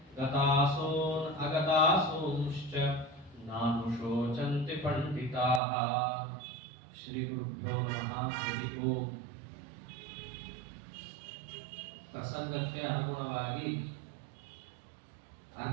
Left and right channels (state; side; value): drops out; left; at 5.6 s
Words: गतासून् अगतासूंश्च नानुशोचन्ति पण्डिताः। श्रीगुरुभ्यो नमः। हरिः ओम्। ಪ್ರಸಂಗಕ್ಕೆ ಅನುಗುಣವಾಗಿ